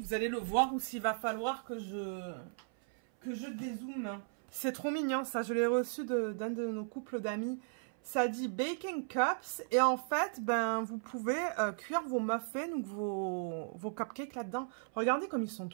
allez le voir ou s'il va falloir que je dézoome. C'est trop mignon, ça. Je l'ai reçu d'un de nos couples d'amis. Ça dit Baking Cups. Et en fait, ben, vous pouvez cuire vos muffins ou vos cupcakes là-dedans. Regardez comme ils sont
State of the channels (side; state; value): left; silent; 54 dB below the other